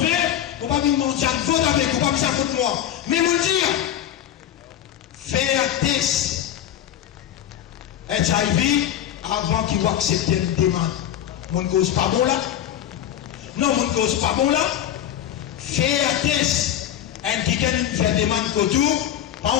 on va me mentir, vote avec, on va me dire contre moi. Mais mon dire, faire un test HIV avant qu'il accepte une demande. Mon cause pas bon là? Non, mon cause pas bon là? Faire un test, un qui fait demande autour, pas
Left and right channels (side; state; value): right; quieter; 10.9 dB